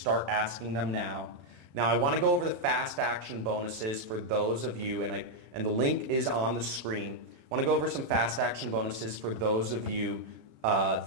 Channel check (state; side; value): late; left; 34 ms